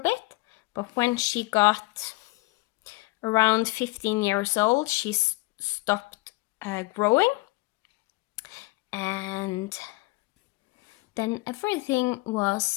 but when she got around 15 years old, she stopped growing, and then everything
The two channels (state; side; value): quieter; right; 23.4 dB